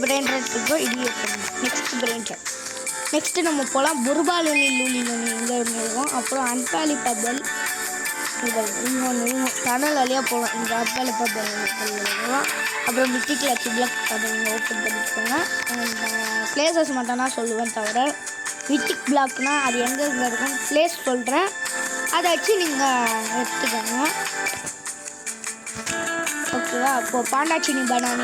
பிரெயின் ராட் இருக்கும். இது நெக்ஸ்ட் பிரெயின் ராட். நெக்ஸ்ட்டு நம்ம போகலாம் புர்பாலுனி இங்கே இருக்கும். அப்புறம் அன்பாலி பபல் டனல் வழியாக போகலாம். இந்த அன்பாலி பபல் போகலாம். அப்புறம் மித்திக் லட்சி பிளாக் அதை நீங்கள் ஓப்பன் பண்ணிக்கோங்க. பிளேசஸ் மட்டும் தான் சொல்லுவேன் தவிர மித்திக் பிளாக்னால் அது எங்கே இருக்கும் பிளேஸ் சொல்கிறேன், அதை வச்சு நீங்கள் எடுத்துக்கோங்க ஓகேவா. அப்போது பாண்டாச்சினி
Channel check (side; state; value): both; identical; correlation 1.00